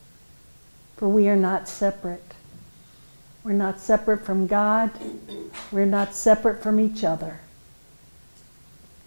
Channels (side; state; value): both; inverted; correlation -1.00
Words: for we are not separate. We're not separate from God. We're not separate from each other.